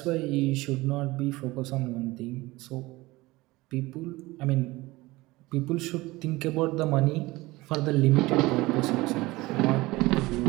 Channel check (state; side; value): quieter; left; 20.3 dB